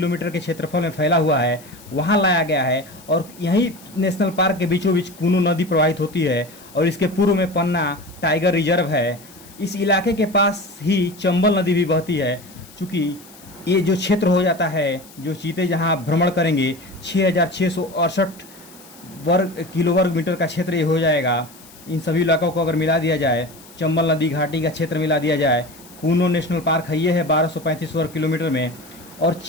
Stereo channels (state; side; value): noise; left; hiss, 22 dB below the sound